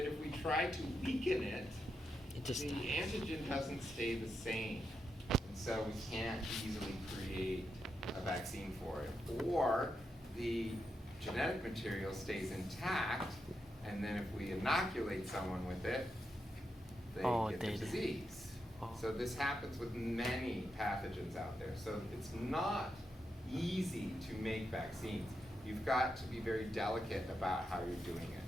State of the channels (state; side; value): normal; both; correlation 0.85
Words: if we try to weaken it, It just the antigen doesn't stay the same. And so we can't easily create a vaccine for it. Or the genetic material stays intact, and then if we inoculate someone with it, they get the disease. Oh. So this happens with many pathogens out there. So it's not easy to make vaccines. You've got to be very delicate about how you're doing it.